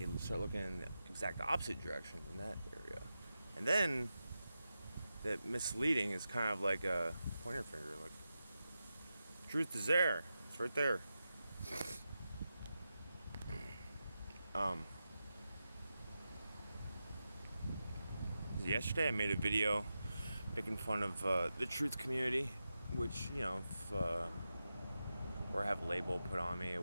start looking in the exact opposite direction in that area. And then that misleading is kind of like a pointer finger, like, truth is there. It's right there. Yesterday I made a video making fun of the truth community, which, if or have a label put on me, it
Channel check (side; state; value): both; inverted; correlation -0.90